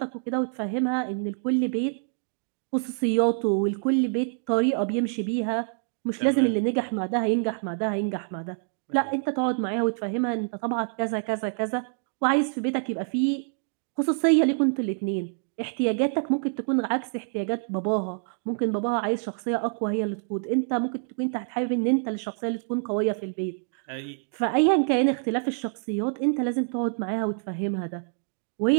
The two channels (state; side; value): silent; left; digital silence